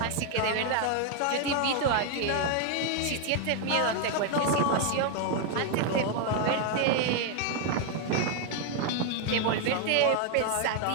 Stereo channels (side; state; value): both; different; correlation 0.00